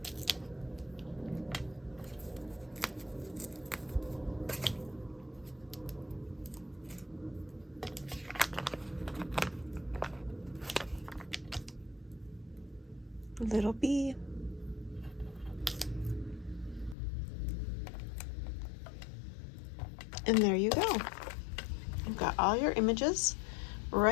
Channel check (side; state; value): right; drops out; at 16.9 s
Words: Little bee. And there you go. You've got all your images